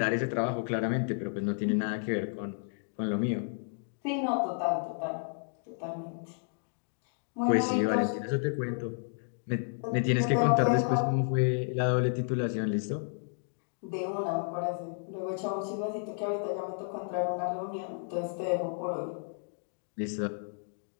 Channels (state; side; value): silent; right; digital silence